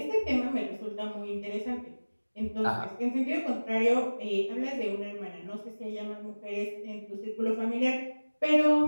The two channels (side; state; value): both; inverted; correlation -1.00